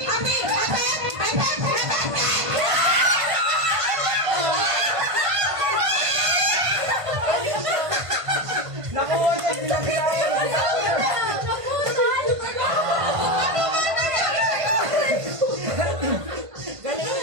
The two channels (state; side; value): late; left; 1.5 ms